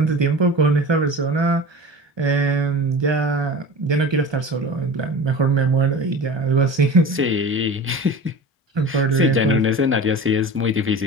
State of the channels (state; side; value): normal; both; correlation 0.34